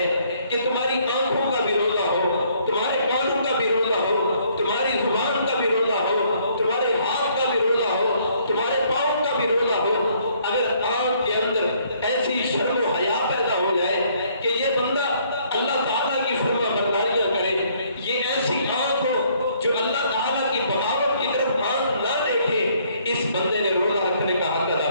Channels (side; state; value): both; inverted; correlation -0.65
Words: کہ تمہاری آنکھوں کا بھی روزہ ہو، تمہارے کانوں کا بھی روزہ ہو، تمہاری زبان کا بھی روزہ ہو، تمہارے ہاتھ کا بھی روزہ ہو، تمہارے پاؤں کا بھی روزہ ہو۔ اگر آنکھ کے اندر ایسی شرم و حیا پیدا ہو جائے کہ یہ بندہ اللہ تعالیٰ کی فرما برداریاں کرے، یہ ایسی آنکھ ہو جو اللہ تعالیٰ کی بغاوت کی طرف آنکھ نہ دیکھے، اس بندے نے روزہ رکھنے کا حق